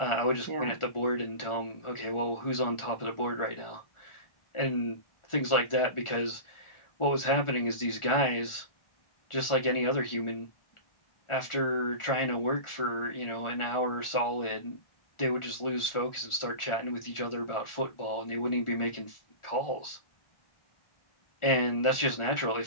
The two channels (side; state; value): right; late; 1.4 ms